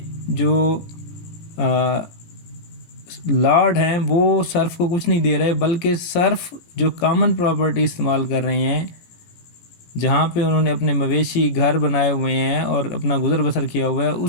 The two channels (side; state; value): right; late; 17 ms